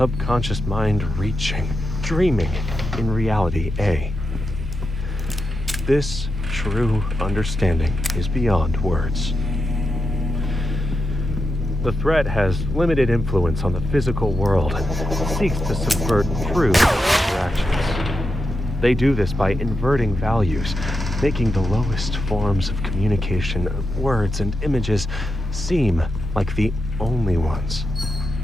mind reaching, dreaming in reality A. This true understanding is beyond words. The threat has limited influence on the physical world and seeks to subvert true interactions. They do this by inverting values, making the lowest forms of communication, words and images, seem like the only ones.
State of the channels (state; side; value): normal; both; correlation 0.87